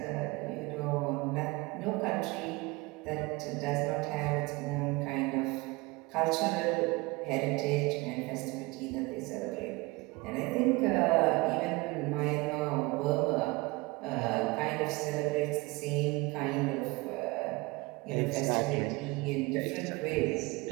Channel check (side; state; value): left; quieter; 23.9 dB